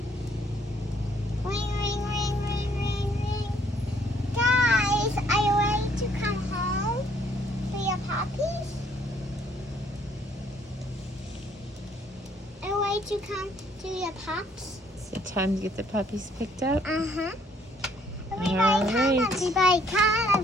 Ring, ring, ring, ring, ring, ring. Guys, are you ready to come home for your puppies? Are you ready to come to your pups? Is it time to get the puppies picked up? Uh-huh. Everybody All come, right. everybody come,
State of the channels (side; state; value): both; normal; correlation 0.65